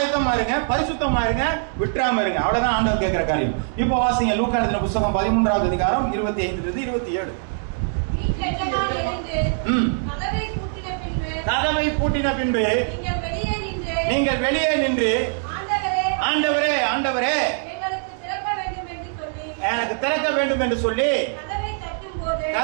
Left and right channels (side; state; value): left; silent; digital silence